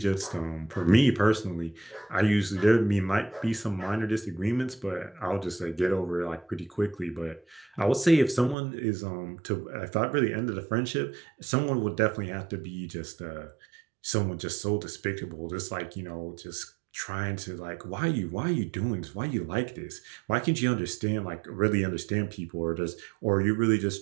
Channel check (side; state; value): left; drops out; at 8.6 s